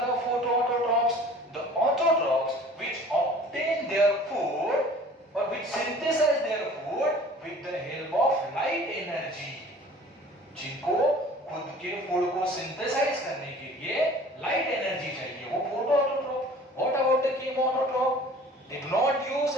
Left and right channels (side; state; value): both; normal; correlation 0.47